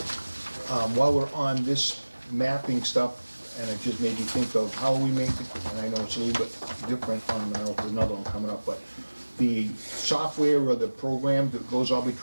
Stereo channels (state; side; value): inverted; both; correlation -1.00